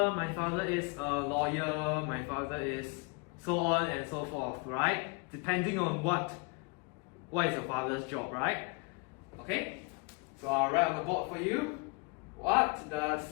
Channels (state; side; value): quieter; right; 31.1 dB